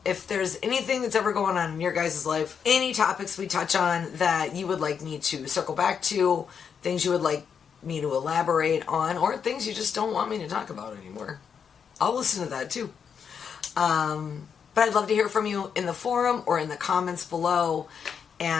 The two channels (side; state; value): right; quieter; 7.0 dB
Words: if there's anything that's ever going on in your guys' life, any topics we touch on that you would like me to circle back to, things you would like me to elaborate on, or things you just don't want me to talk about anymore, I'll listen to that too. But I'd love to hear from you in the forum or in the comments below.